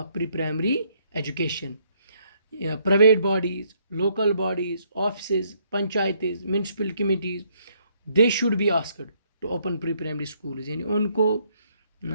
pre primary education. Private bodies, local bodies, office, पंचायतें, municipal committees, they should be asked to open pre primary schools. यानी उनको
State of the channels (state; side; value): inverted; both; correlation -0.70